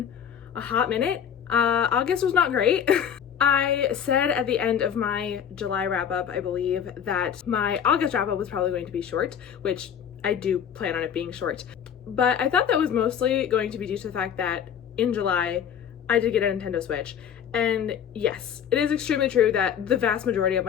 a hot minute. August was not great. I said at the end of my July wrap-up, I believe, that my August wrap-up was probably going to be short, which I do plan on it being short. But I thought that was mostly going to be due to the fact that in July, I did get a Nintendo Switch. And yes, it is extremely true that the vast majority of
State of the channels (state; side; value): quieter; right; 8.5 dB